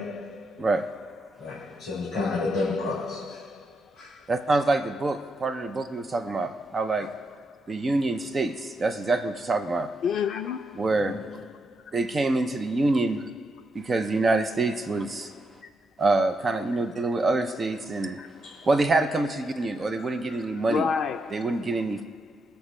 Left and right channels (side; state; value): both; normal; correlation 0.82